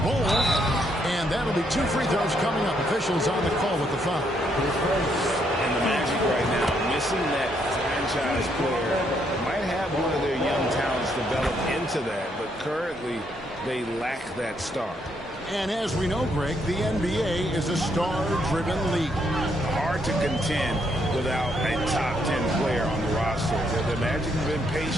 Bull. And that'll be 2 free throws coming up. Officials on the call with the foul. And the Magic right now, missing that franchise player, might have one of their young talents develop into that, but currently they lack that star. And as we know, Greg, the NBA is a star-driven league. Hard to contend without a top 10 player on the roster. The Magic have been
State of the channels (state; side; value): normal; both; correlation 0.74